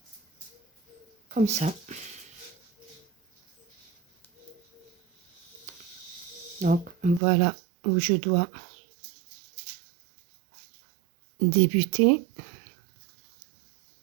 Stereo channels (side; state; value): left; drops out; at 7.2 s